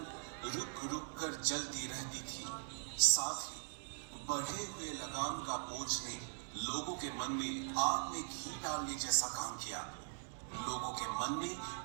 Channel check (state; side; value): silent; left; digital silence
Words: रुक रुक कर जलती रहती थी। साथ ही बढ़े हुए लगाम का बोझ ने लोगों के मन में आग में घी डालने जैसा काम किया। लोगों के मन में